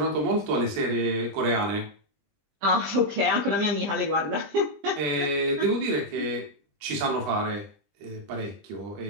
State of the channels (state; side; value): late; left; 20 ms